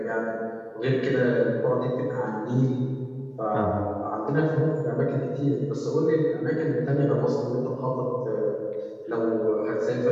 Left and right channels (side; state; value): both; identical; correlation 1.00